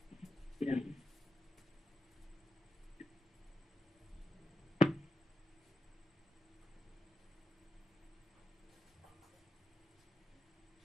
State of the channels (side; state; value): both; normal; correlation 0.86